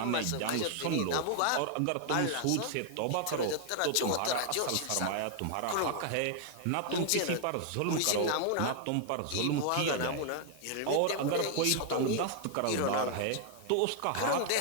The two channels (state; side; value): different; both; correlation 0.00